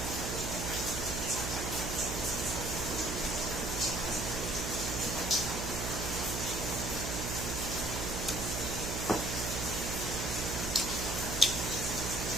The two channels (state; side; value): noise; right; hum, 3 dB below the sound